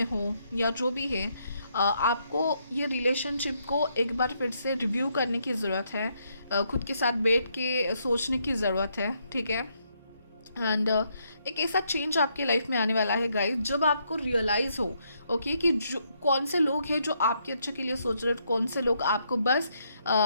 हो या जो भी है, आपको ये रिलेशनशिप को एक बार फिर से रिव्यू करने की ज़रूरत है, खुद के साथ बैठ के सोचने की ज़रूरत है, ठीक है। एंड एक ऐसा चेंज आपके लाइफ में आने वाला है गाइस, जब आपको रियलाइज़ हो ओके कि जो कौन से लोग हैं जो आपके अच्छे के लिए सोच रहे हैं, कौन से लोग आपको बस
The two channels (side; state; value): both; inverted; correlation -0.75